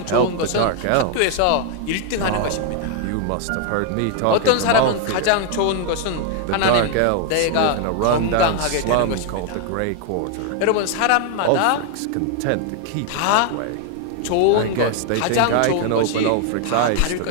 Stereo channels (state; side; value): different; both; correlation 0.00